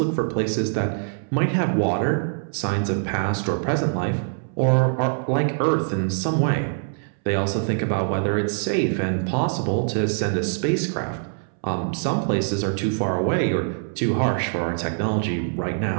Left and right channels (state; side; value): silent; left; 63 dB below the other